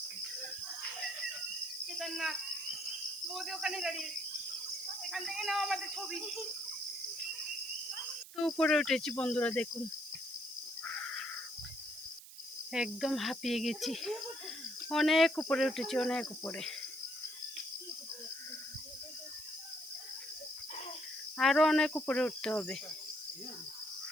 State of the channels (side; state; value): right; noise; hiss, 16 dB below the sound